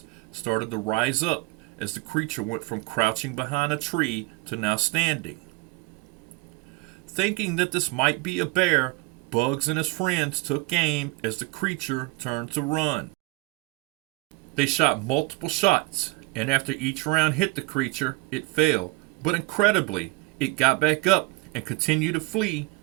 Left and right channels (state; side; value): quieter; left; 24.0 dB